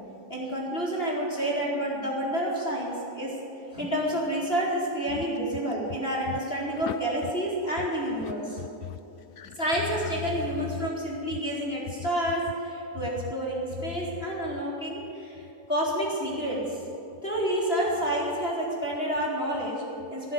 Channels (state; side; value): late; right; 2.9 ms